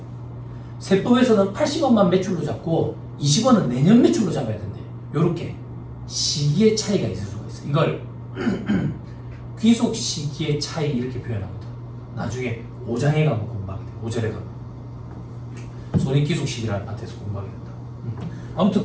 세법에서는 80원만 매출로 잡고 20원은 내년 매출로 잡아야 된대. 요렇게 시기의 차이가 있을 수가 있어. 이걸 귀속 시기의 차이 이렇게 표현하거든. 나중에 5장에 가면 공부하게 돼. 5절에 가면 손익 귀속 시기라는 파트에서 공부하게 된다. 아무튼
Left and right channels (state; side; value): identical; both; correlation 1.00